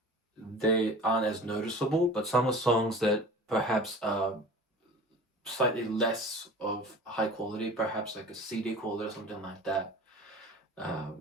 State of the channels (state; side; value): normal; both; correlation 0.39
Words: they aren't as noticeable, but some of the songs that perhaps are slightly less of high quality, perhaps like a CD quality or something like that,